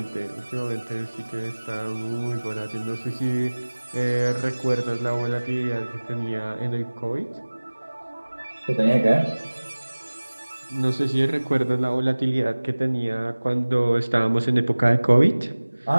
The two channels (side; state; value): both; inverted; correlation -1.00